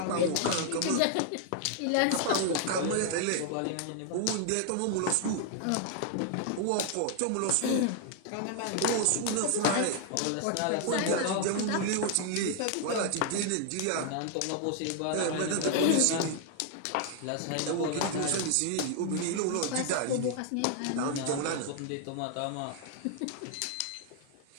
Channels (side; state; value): both; different; correlation 0.00